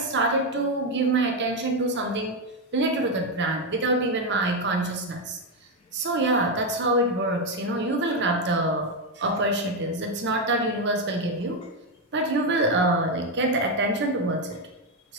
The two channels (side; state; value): both; normal; correlation 0.06